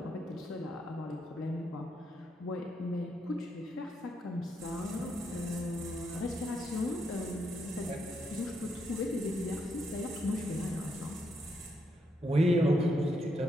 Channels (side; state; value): both; normal; correlation 0.79